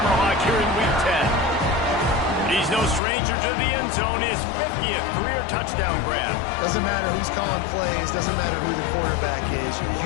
here in Week 10. He's no stranger to the end zone. His 50th career touchdown grab. Doesn't matter who's calling plays. Doesn't matter who the quarterback is.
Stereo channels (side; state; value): right; drops out; at 3.0 s